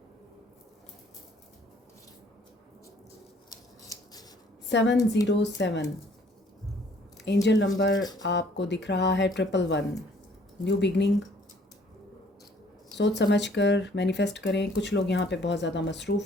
सेवन 707 एंजल नंबर आपको दिख रहा है 111। न्यू बिगनिंग, सोच समझ कर मैनिफेस्ट करें। कुछ लोग यहाँ पे बहुत ज़्यादा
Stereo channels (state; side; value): normal; both; correlation 0.59